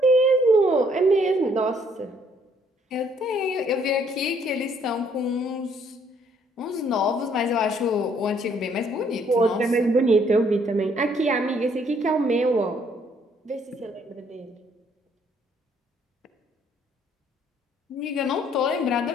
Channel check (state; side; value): normal; both; correlation 0.66